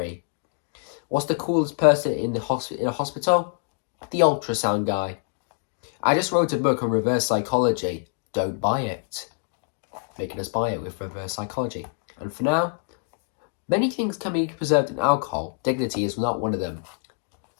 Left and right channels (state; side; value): silent; right; 55 dB below the other